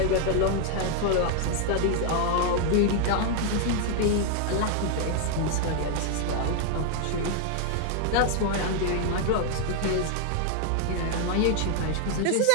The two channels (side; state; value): both; different; correlation 0.00